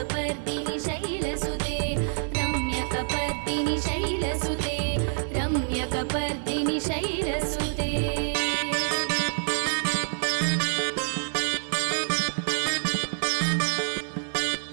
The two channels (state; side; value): silent; left; 60 dB below the other